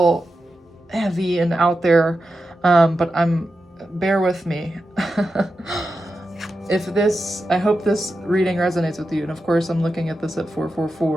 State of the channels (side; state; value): both; normal; correlation 0.90